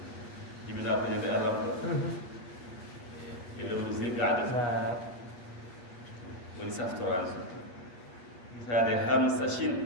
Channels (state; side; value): late; right; 8.4 ms